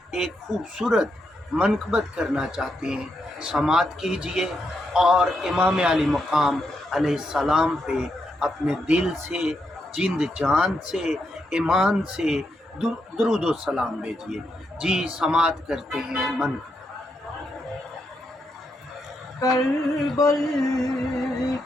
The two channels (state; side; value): normal; both; correlation 0.81